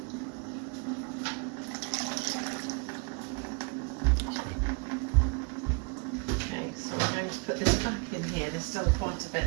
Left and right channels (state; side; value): quieter; left; 34.0 dB